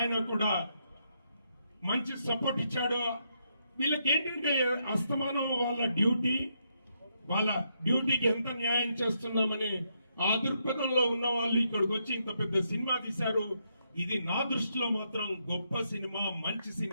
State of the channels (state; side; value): inverted; both; correlation -0.78